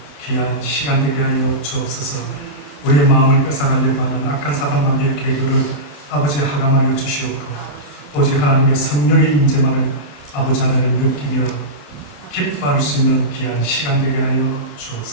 귀한 시간 되게 하여 주옵소서. 우리의 마음을 뺏어가려고 하는 악한 사단마귀의 계교를 아버지 하감하여 주시옵고 오직 하나님의 성령의 임재만을 아버지 하나님 느끼며 기뻐할 수 있는 귀한 시간 되게 하여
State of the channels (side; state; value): right; late; 28 ms